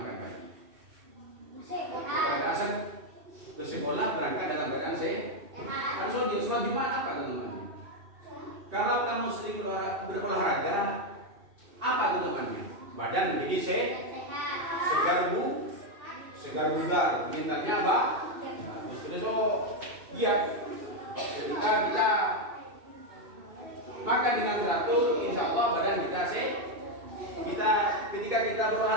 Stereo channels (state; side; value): late; left; 2.7 ms